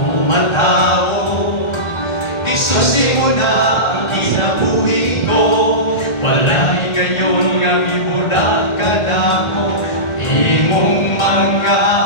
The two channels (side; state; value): right; late; 1.3 ms